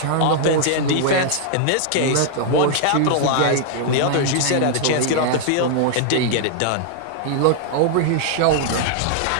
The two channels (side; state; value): both; different; correlation -0.01